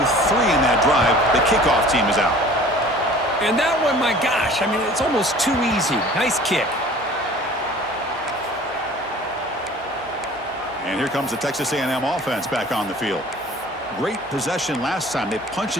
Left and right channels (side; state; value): both; normal; correlation 0.47